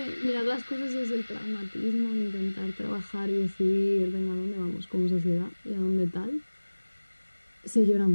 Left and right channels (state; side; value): inverted; both; correlation -1.00